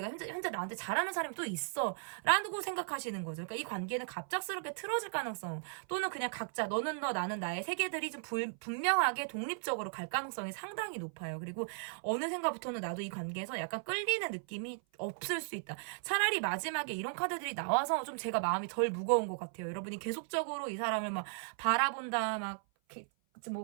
현재 나한테 잘하는 사람이 또 있어. 라고 생각하시는 거죠. 그러니까 이 관계는 갑작스럽게 틀어질 가능성, 또는 그냥 각자 너는 너 나는 나의 세계들이 좀 분명하게 독립적으로 갈 가능성이 상당히 높아요. 그리고 어느 생각부터는 나도 이 관계에서 약간 끌리는 느낌이 없을 수 있다. 차라리 마지막에 이런 카드들이 나와서 좀 제가 마음이 덜 무거운 것 같아요. 여러분이 계속적으로 이 사람을 막 바라본다, 막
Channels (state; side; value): silent; left; 53 dB below the other